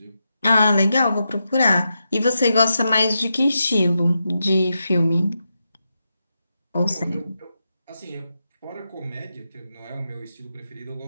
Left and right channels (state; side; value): inverted; both; correlation -0.87